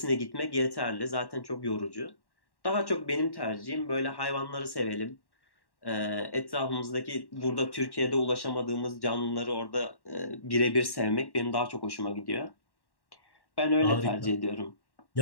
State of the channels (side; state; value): right; late; 1.1 ms